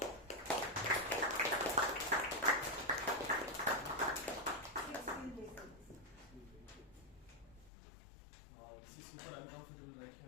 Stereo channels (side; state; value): right; drops out; at 7.7 s